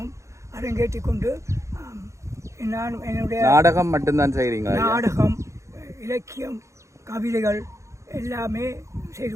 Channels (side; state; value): left; late; 0.14 ms